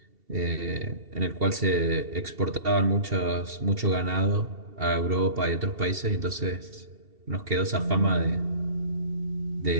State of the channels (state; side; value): late; left; 2.7 ms